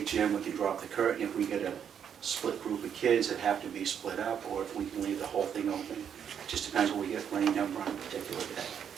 gym. We can drop the curtain if we get a split group of kids that have to be split up, or if we can leave the whole thing open. It just depends what we get for any number on a particular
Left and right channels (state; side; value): quieter; left; 8.2 dB